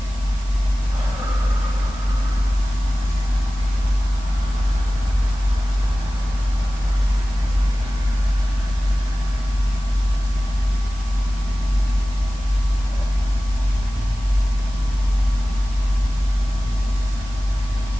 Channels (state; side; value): noise; left; hiss, 23 dB below the sound